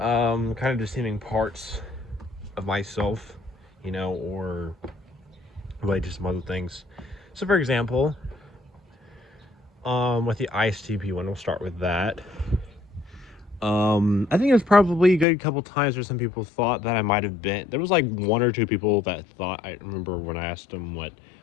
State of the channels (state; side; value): drops out; right; at 15.2 s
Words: of just seeming parts of myself, you know, or really just some other things. So for example, with the ISTP one, we'll start with that. I think it was probably a good couple times where some people thought that I might have been. There was like one or two people that thought. I remember when I asked them what,